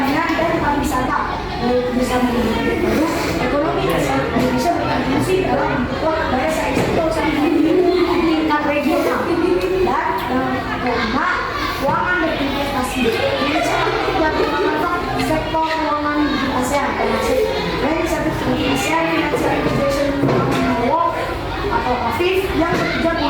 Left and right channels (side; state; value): both; identical; correlation 1.00